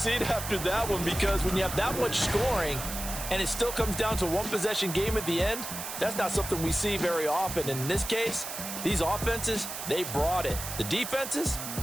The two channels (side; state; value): right; noise; hiss, 7 dB below the sound